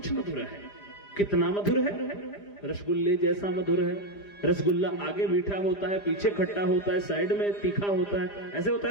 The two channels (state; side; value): late; right; 4.9 ms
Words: मधुर है। कितना मधुर है? रसगुल्ले जैसा मधुर है। रसगुल्ला आगे मीठा होता है, पीछे खट्टा होता है, साइड में तीखा होता है, ऐसे होता